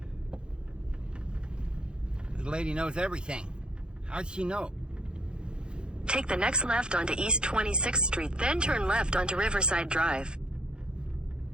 This lady knows everything. How'd she know? Take the next left onto East 26th Street, then turn left onto Riverside Drive.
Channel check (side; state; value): left; late; 0.049 ms